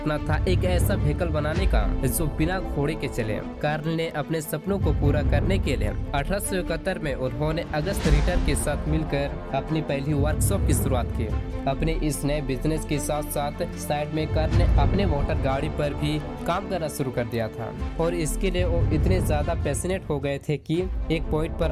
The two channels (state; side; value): identical; both; correlation 1.00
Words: था एक ऐसा व्हीकल बनाने का जो बिना घोड़े के चले। कार्ल ने अपने सपनों को पूरा करने के लिए 1871 में उन्होंने अगस्त रिटर के साथ मिलकर अपनी पहली वर्कशॉप की शुरुआत की। अपने इस नए बिजनेस के साथ साथ साइड में कार्ल ने अपने मोटर गाड़ी पर भी काम करना शुरू कर दिया था और इसके लिए वो इतने ज्यादा पैशनेट हो गए थे कि एक पॉइंट